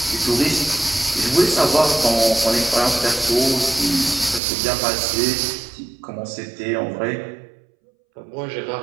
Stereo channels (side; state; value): left; drops out; at 4.4 s